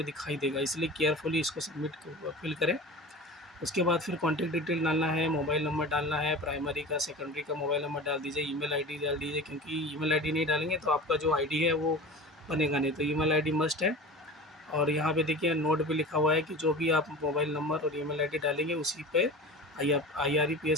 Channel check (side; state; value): both; normal; correlation 0.34